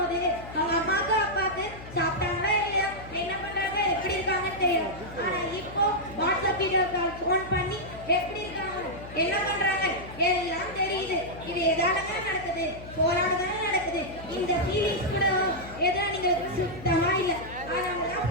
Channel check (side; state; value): left; noise; hum, 15 dB below the sound